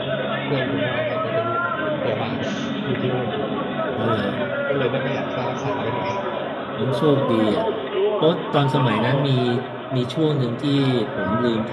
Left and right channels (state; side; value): identical; both; correlation 1.00